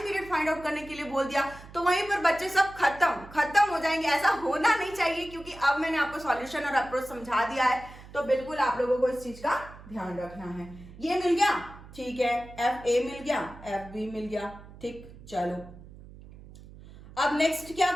फाइंड आउट करने के लिए बोल दिया तो वहीं पर बच्चे सब खत्म हो जाएंगे। ऐसा होना नहीं चाहिए, क्योंकि अब मैंने आपको सॉल्यूशन और अप्रोच समझा दिया है, तो बिल्कुल आप लोगों को इस चीज का ध्यान रखना है। ये मिल गया, ठीक है, एफ ए मिल गया, एफ बी मिल गया, ठीक। चलो अब नेक्स्ट क्या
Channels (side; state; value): right; noise; hum, 18 dB below the sound